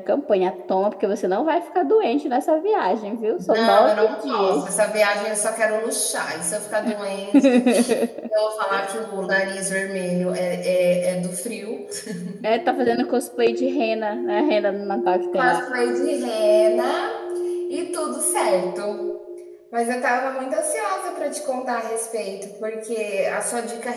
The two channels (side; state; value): both; identical; correlation 1.00